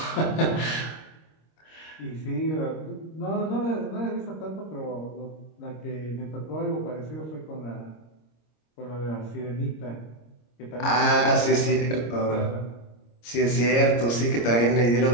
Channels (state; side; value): late; right; 26 ms